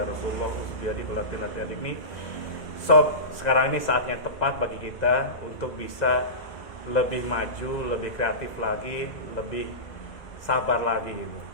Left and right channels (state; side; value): late; right; 2.0 ms